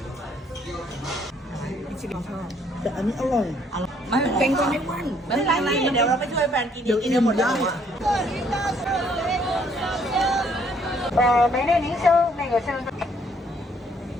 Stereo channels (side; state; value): both; normal; correlation 0.65